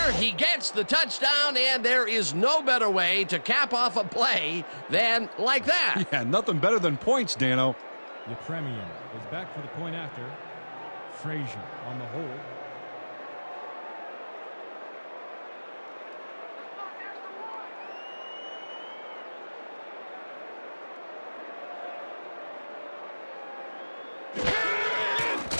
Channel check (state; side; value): inverted; both; correlation -1.00